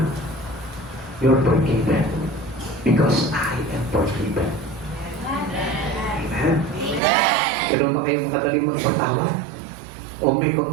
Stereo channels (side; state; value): left; drops out; at 7.0 s